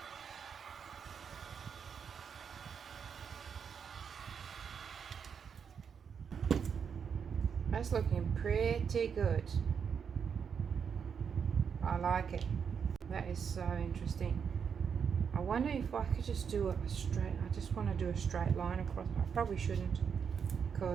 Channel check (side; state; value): left; quieter; 6.9 dB